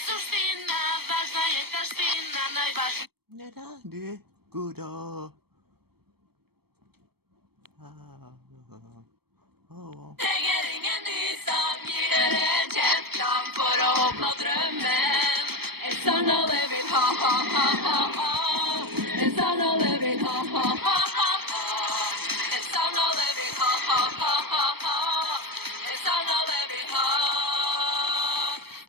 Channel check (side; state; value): left; late; 0.96 ms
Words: suština, važna je taština, najvažnija. Ne radi guda. Trenger ingen ny som gir et kjent navn for å oppnå drømmen. En sang alle vil ha, ha, ha, ha, ha. En sang alle vil ha, ha, ha, ha, ha. En sang alle vil ha, ha, ha, ha, ha. En sang alle vil ha.